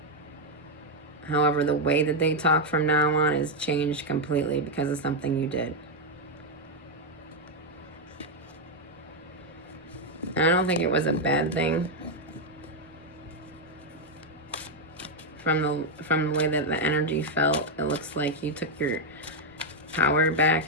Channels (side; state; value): both; normal; correlation 0.02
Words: However, the way that they talk from now on is changed completely because of something you did. And I don't think it was a bad thing. From the way that the energy felt, it looks like you took your power